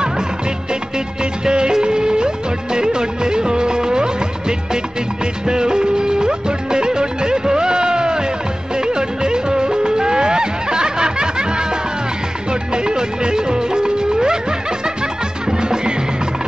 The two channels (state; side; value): normal; both; correlation 0.97